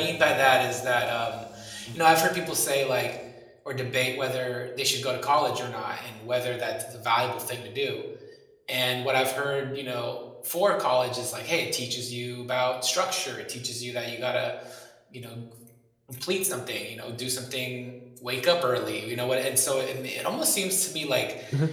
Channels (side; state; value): both; identical; correlation 1.00